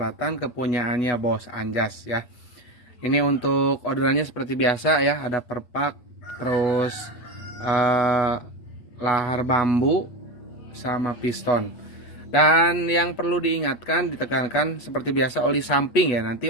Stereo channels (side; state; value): right; late; 8.2 ms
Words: kepunyaannya Bos Anjas ya. Ini untuk orderannya seperti biasa ya, ada perpak, terus eh, lahar bambu sama piston. Dan yang perlu diingatkan, ditekankan seperti biasa oli samping ya.